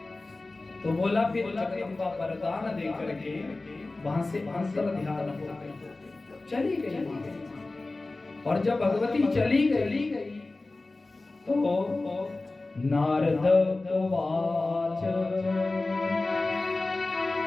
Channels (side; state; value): right; quieter; 3.2 dB